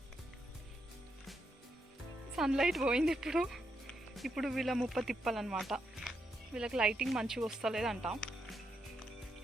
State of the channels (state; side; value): normal; both; correlation 0.81